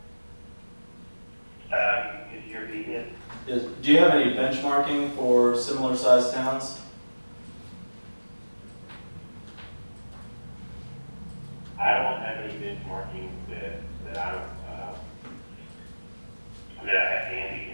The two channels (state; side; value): inverted; both; correlation -1.00